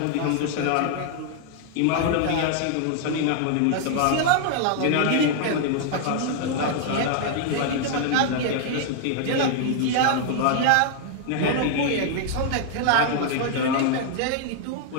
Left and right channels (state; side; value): different; both; correlation 0.00